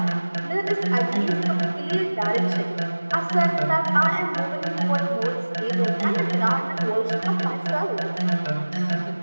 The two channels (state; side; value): inverted; both; correlation -1.00